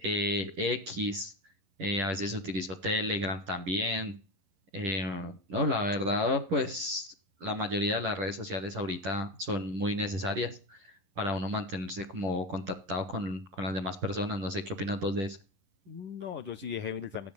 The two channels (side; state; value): left; late; 11 ms